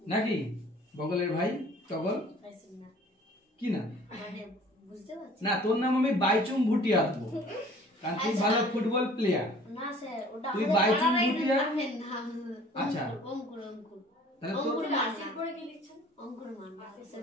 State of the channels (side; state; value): both; normal; correlation 0.51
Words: নাকি বগলের ভাই টগল? কি না বুঝতে পারছি না, তোর নাম আমি বাইচুং ভুটিয়া দেবো, কারণ তুই ভালো ফুটবল প্লেয়ার। না স্যার, ওটা তুই বাইচুং ভুটিয়া। আচ্ছা, আচ্ছা, অঙ্কুর অঙ্কুর তাহলে অঙ্কুর তোর মাসির পরে কি লিখছেন? অঙ্কুর মান স্যার